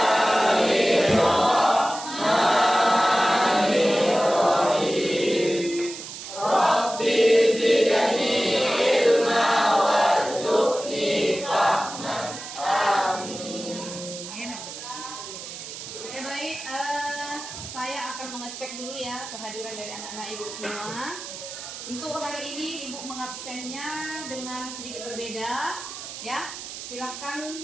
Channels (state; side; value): noise; right; hiss, 11 dB below the sound